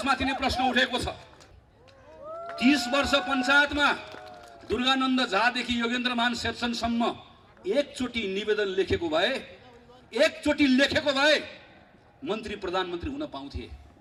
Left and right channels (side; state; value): both; identical; correlation 1.00